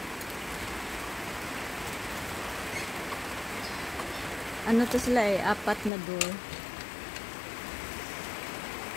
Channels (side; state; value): right; drops out; at 5.9 s